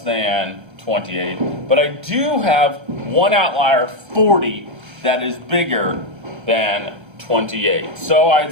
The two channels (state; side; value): late; left; 1.3 ms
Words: 28. But I do have one outlier, 40, that is bigger than 28. So I'd